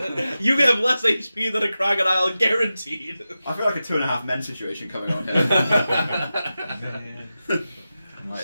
You have less HP than a crocodile, guaranteed. I feel like a 2.5 men situation coming on here. Man.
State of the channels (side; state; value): both; inverted; correlation -0.93